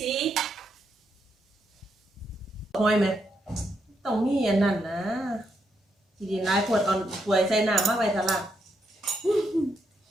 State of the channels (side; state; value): both; normal; correlation 0.79